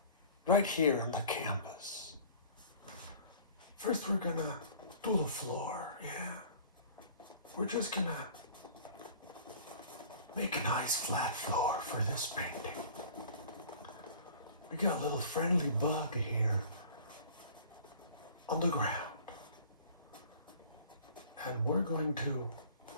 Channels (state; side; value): inverted; both; correlation -0.46